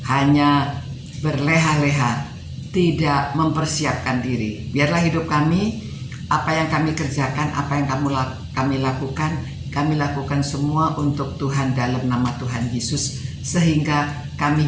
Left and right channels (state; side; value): identical; both; correlation 1.00